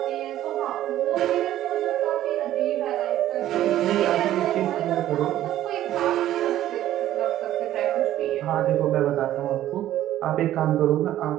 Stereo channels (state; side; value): quieter; left; 13.0 dB